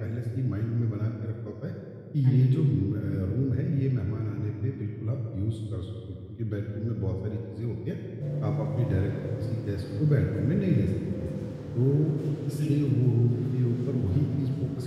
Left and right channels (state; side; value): identical; both; correlation 1.00